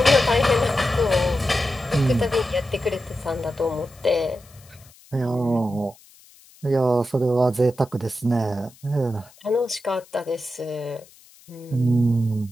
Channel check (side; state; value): left; noise; hiss, 26 dB below the sound